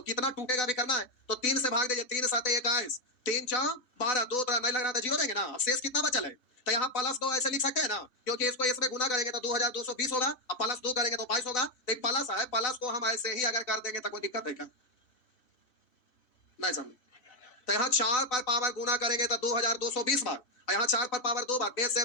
कितना टूटेगा भी करना है, तो 3 से भाग दीजिए, 3 7 21, 3 4 12, 2 नहीं लग रहा था, जीरो देंगे ना। अब शेष कितना बचल है? तो यहाँ प्लस 2 ऐसे लिख सकते हैं ना, क्योंकि इसको इसमें गुना करेंगे तो 2220 होगा, अब प्लस 2 करेंगे तो 22 होगा। तो प्लस है, प्लस को हम ऐसे ही अगर कर देंगे तो कोई दिक्कत है क्या? नहीं समझ? तो यहाँ 4 पर पावर गुना करेंगे तो 2220 बार, यहाँ 4 पर पावर 2 बार, बेस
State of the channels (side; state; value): right; late; 2.7 ms